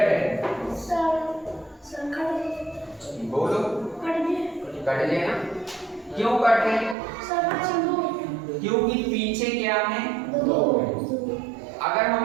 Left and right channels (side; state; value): left; drops out; at 7.0 s